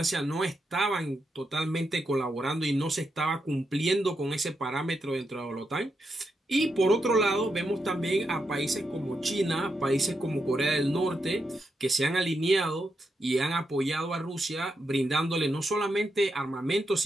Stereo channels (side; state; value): both; normal; correlation 0.84